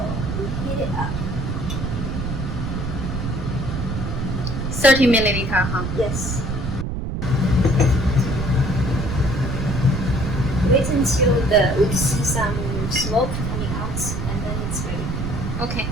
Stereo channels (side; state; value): right; noise; rumble, 3 dB below the sound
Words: We heat it up. 30 milliliter, huh? Yes. Wait until we see some smoke coming out, and then it's ready. Okay.